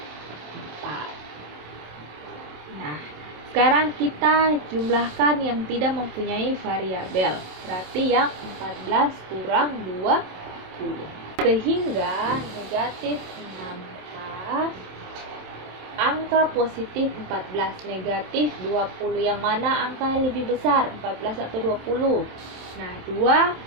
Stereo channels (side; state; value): left; late; 27 ms